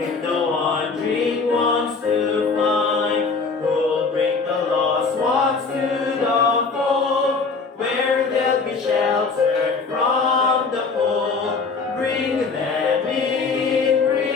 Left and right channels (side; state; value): right; quieter; 4.6 dB